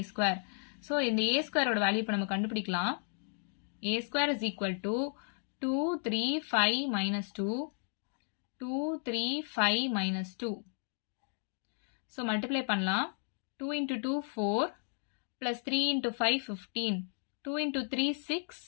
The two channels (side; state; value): right; silent; 55 dB below the other